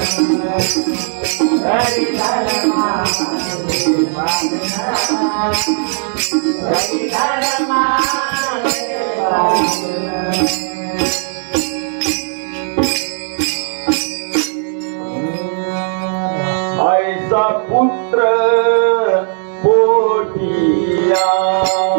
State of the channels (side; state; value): left; silent; 62 dB below the other